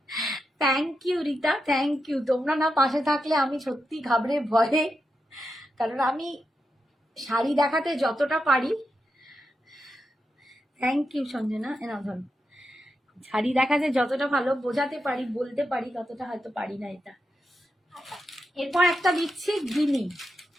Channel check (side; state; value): both; normal; correlation 0.87